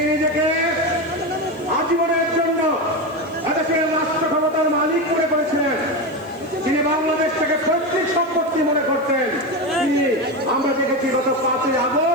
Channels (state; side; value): noise; right; hiss, 29 dB below the sound